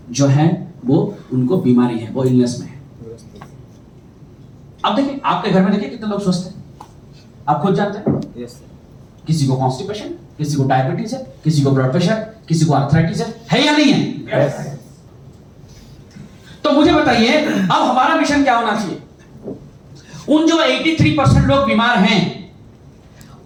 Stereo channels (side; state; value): both; identical; correlation 1.00